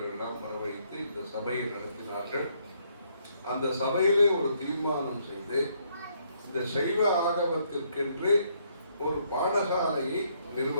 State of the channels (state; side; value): inverted; both; correlation -0.71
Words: வரவழைத்து இந்த சபையை நடத்தினார்கள். அந்த சபையிலே ஒரு தீர்மானம் செய்து, இந்த சைவ ஆகமத்திற்கென்று ஒரு பாடசாலையை